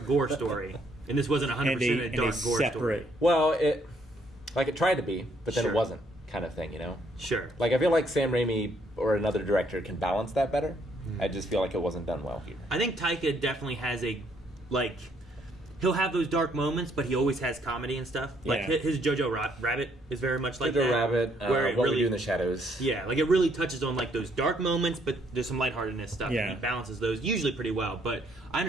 gore story, and this wasn't 100% a dark gore story. Well, it tried to be, but then Sure. it wasn't, kind of thing, you know? Sure. Like, I feel like Sam Raimi or another director can balance that better. I just feel like it wasn't done well here. I think Taika definitely has he'll have those dark moments, but he always has comedy and stuff. Like his Jojo Rabbit is very much like Jojo that. Rabbit, where it What really, We Do in the Shadows. Yeah, like it really touches on like those dark moments, but there's some lightheartedness stuff. Yeah. And he balances those usually pretty well. But I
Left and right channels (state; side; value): normal; both; correlation 0.69